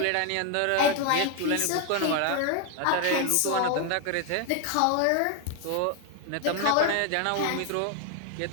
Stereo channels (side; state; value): both; different; correlation 0.01